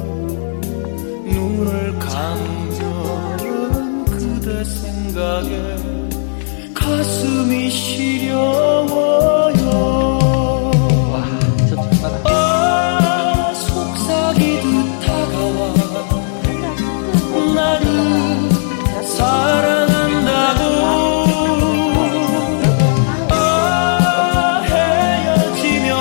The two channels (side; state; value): right; silent; digital silence